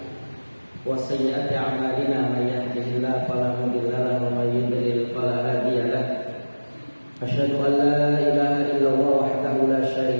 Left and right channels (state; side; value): inverted; both; correlation -1.00